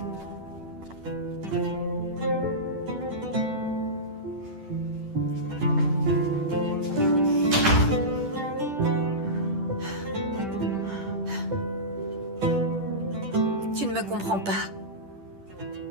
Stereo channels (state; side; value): late; left; 10 ms